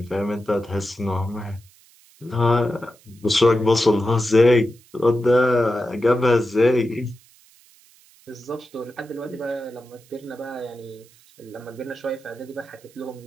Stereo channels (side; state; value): right; noise; hiss, 28 dB below the sound